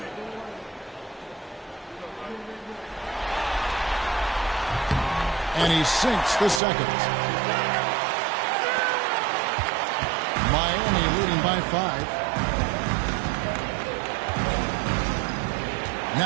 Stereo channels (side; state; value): left; drops out; at 6.6 s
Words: And he sinks the second. Miami leading by 5.